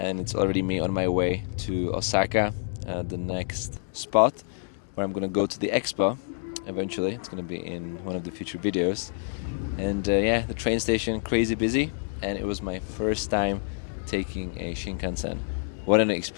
it's already me on my way to Osaka, the next spot where I'm gonna go to the expo. Eventually, it's gonna be in one of the future videos. And yeah, the train station crazy busy, and it was my first time taking a Shinkansen. What an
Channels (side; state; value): right; silent; 60 dB below the other